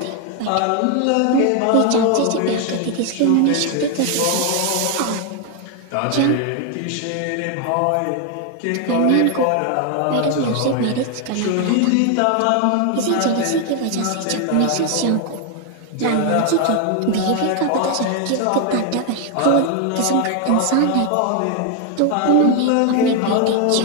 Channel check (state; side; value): different; both; correlation 0.00